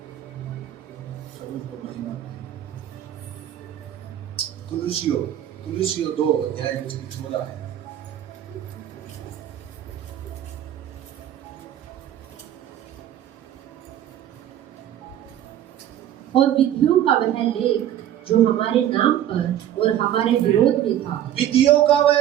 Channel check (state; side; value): quieter; left; 11.4 dB